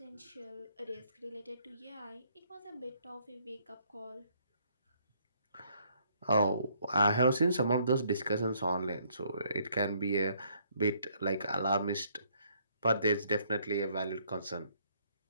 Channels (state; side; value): inverted; both; correlation -0.67